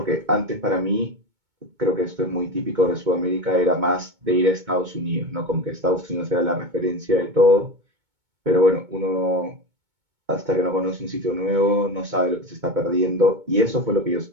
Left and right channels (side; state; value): left; late; 2.2 ms